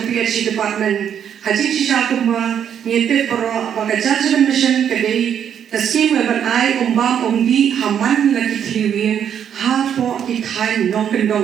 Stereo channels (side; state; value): left; quieter; 8.8 dB